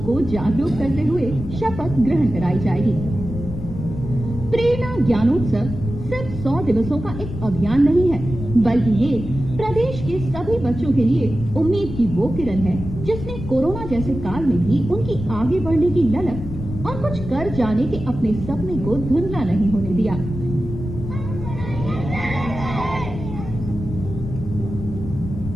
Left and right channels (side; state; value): left; noise; rumble, 8 dB below the sound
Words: को जागरूक करते हुए शपथ ग्रहण कराई जाएगी। प्रेरणा ज्ञानोत्सव सिर्फ 100 दिवसों का एक अभियान नहीं है, बल्कि ये प्रदेश के सभी बच्चों के लिए उम्मीद की वो किरण है, जिसने कोरोना जैसे काल में भी उनकी आगे बढ़ने की ललक और कुछ कर जाने के अपने सपने को धुंधला नहीं होने दिया।